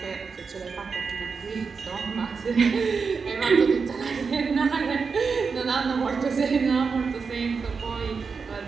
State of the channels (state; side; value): quieter; left; 5.2 dB